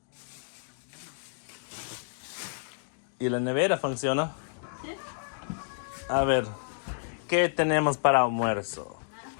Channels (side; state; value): right; silent; digital silence